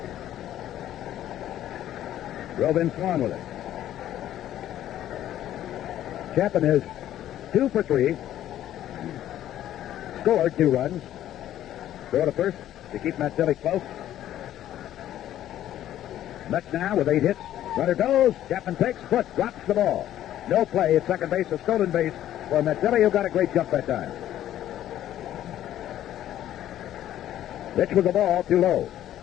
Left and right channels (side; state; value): right; quieter; 12.2 dB